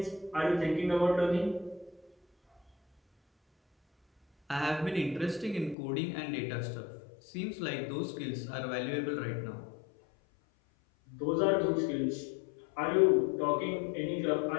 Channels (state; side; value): drops out; right; at 5.8 s